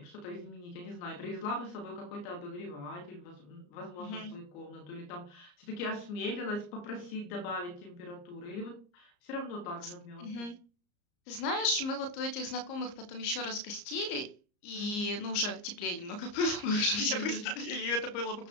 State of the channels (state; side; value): late; right; 34 ms